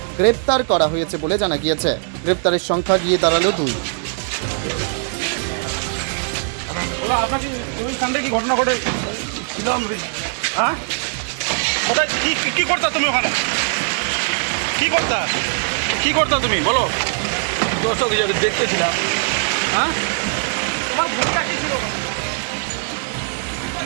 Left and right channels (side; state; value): left; silent; 65 dB below the other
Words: গ্রেপ্তার করা হয়েছে বলে জানা গিয়েছে। গ্রেপ্তারের সংখ্যা গিয়ে দাঁড়ালো 2। আপনাকে ওই কাণ্ডে কি ঘটনা ঘটে ছিলাম? হ্যাঁ, কোথায় কি করতে তুমি? ওখানে কি করতে তুমি বলো? দর্শক হিসাবে দেখতেছিলাম। হ্যাঁ, তোমার ভূমিকা কি ছিল?